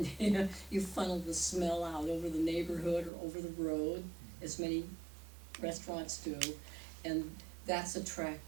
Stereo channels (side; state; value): left; drops out; at 3.1 s